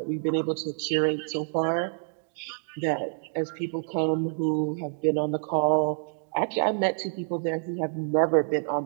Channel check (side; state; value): left; silent; digital silence